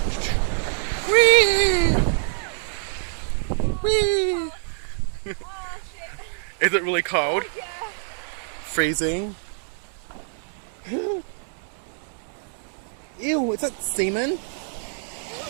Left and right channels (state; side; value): silent; left; digital silence